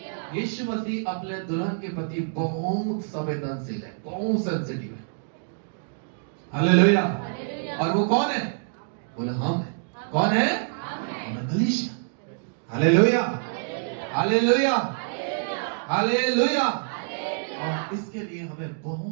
यीशु मसीह अपने दुल्हन के प्रति बहुत संवेदनशील है, बहुत सेंसिटिव है। हालेलुया। और वो कौन है? बोले हम है। कौन है? हम कलीसिया। Hallelujah, hallelujah, hallelujah. और इसके लिए हमें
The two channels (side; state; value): left; silent; digital silence